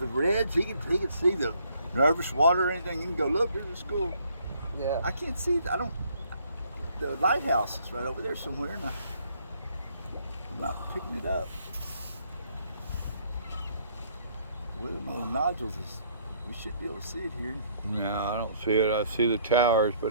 the Reds, he can see the nervous water or anything. He can go, look, there's a school. Yeah. I can't see. The lighthouse is right over there somewhere, and I'm not picking it up. Where the little nodules is, we should be able to see it here. No, I don't see it. I see the towers,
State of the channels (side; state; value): both; inverted; correlation -0.65